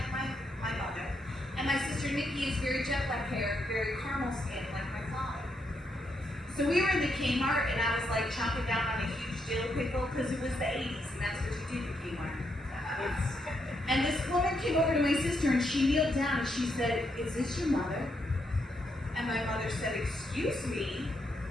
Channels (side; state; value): both; normal; correlation 0.79